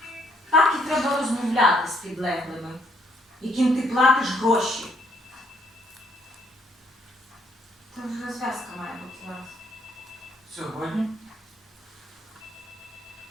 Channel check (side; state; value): both; normal; correlation 0.68